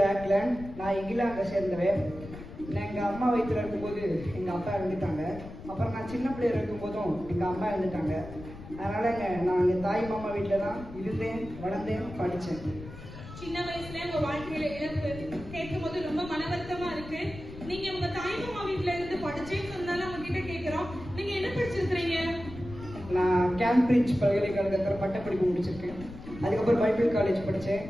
ராக்லன். நான் இங்கிலாந்தை சேர்ந்தவன். நான் எங்க அம்மா வயிற்றுல இருக்கும்போது எங்க அப்பா இறந்துட்டாங்க. அப்புறம் நான் சின்ன பிள்ளைய இருக்கும் போதும் எங்க அம்மா இறந்துட்டாங்க. அதனாலங்க நான் எங்க தாய் மாமா வீட்டுல தான் இருந்தேன், வளர்ந்தேன், படிச்சேன். சின்ன வயசுல உங்க வாழ்க்கையில இழப்பு கேட்கும் போது ரொம்ப மன வருத்தமா இருக்கு. நீங்க உங்க தாய் மாமா வீட்டுல இருந்து படிச்சேன்னு சொன்னாலும் அவங்க கிட்ட கேட்கிறோம், நீங்க என்ன படிச்சிருக்கிறீங்க? நான் கேம்பிரிட்ஜ் பல்கலைக்கழகத்தில் பட்டப்படிப்பு முடிச்சிருக்கேன். அதுக்கப்புறம் பைபிள் காலேஜ் படித்தேன்.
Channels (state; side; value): noise; left; rumble, 14 dB below the sound